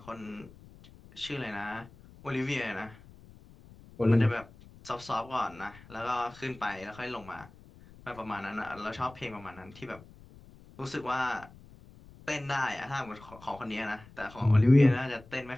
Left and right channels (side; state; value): left; noise; rumble, 21 dB below the sound